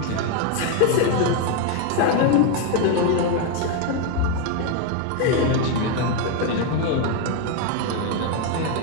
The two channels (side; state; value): both; different; correlation 0.01